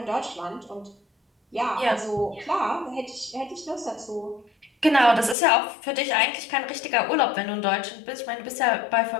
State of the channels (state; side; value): drops out; right; at 5.4 s